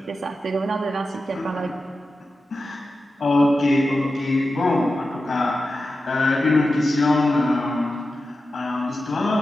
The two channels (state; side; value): normal; both; correlation 0.92